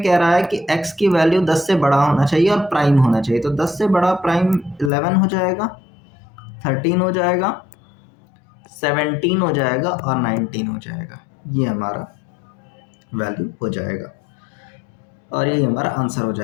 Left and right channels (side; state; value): right; drops out; at 4.9 s